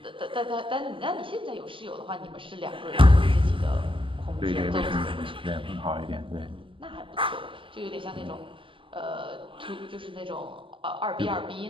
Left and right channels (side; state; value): left; late; 0.25 ms